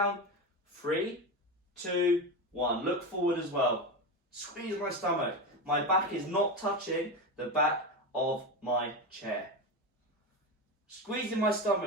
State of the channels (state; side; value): normal; both; correlation 0.18